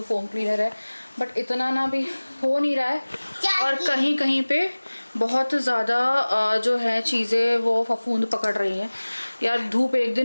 फोम क्लीनर है, बट इतना ना भी हो नहीं रहा है। और कहीं कहीं पे बहुत ज़्यादा जो है चीज़ें वो फफूंद पकड़ रही हैं यार। धूप एक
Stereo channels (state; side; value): inverted; both; correlation -1.00